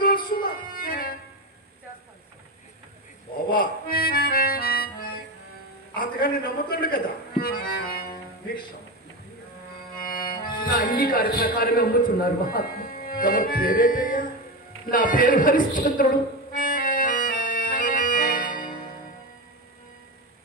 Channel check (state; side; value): normal; both; correlation 0.18